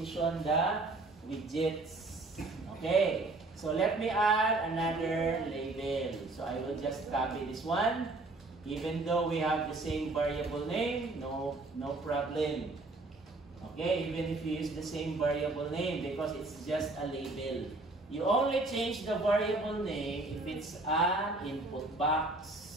the widgets. Okay, so let me add another label. So I will just copy this one. Even though we have the same variable name, no problem. Okay, even if you use the same variable name, because it's just a label. You only change the variable name if it's an input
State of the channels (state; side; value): quieter; left; 3.1 dB